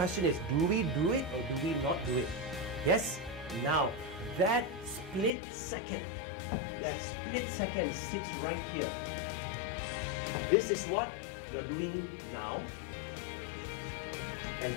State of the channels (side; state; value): right; drops out; at 5.3 s